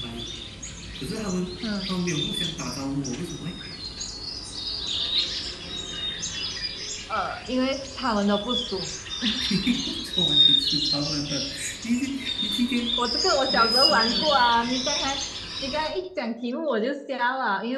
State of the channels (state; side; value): identical; both; correlation 1.00